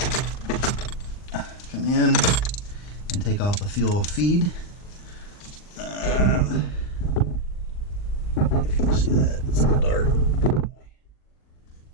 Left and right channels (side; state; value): right; late; 39 ms